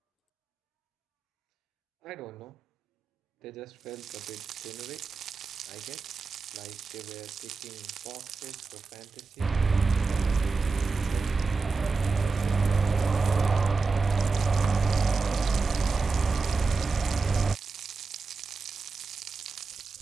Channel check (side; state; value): left; quieter; 4.3 dB